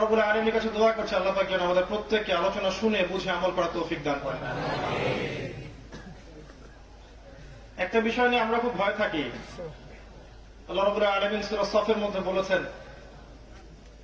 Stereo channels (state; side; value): identical; both; correlation 1.00